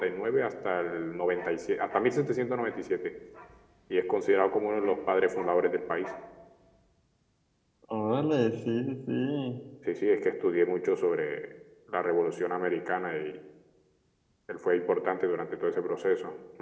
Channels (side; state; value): both; identical; correlation 1.00